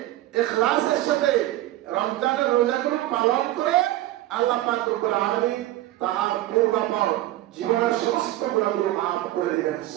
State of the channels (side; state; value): left; quieter; 15.5 dB